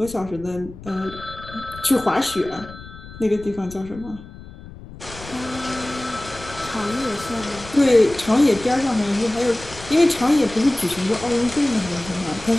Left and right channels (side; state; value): left; noise; rumble, 16 dB below the sound